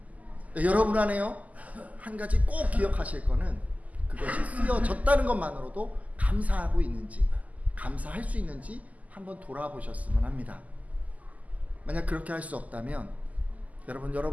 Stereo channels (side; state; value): left; late; 0.075 ms